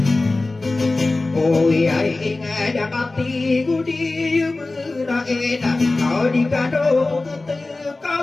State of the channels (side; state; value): right; quieter; 3.2 dB